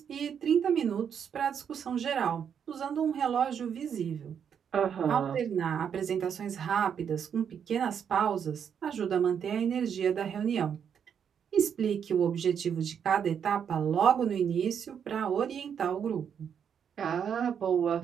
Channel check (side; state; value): left; quieter; 7.8 dB